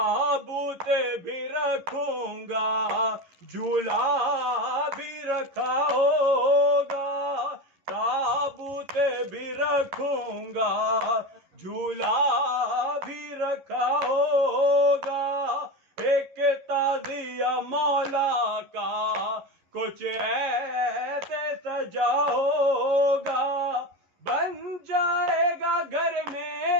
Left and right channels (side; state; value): left; late; 11 ms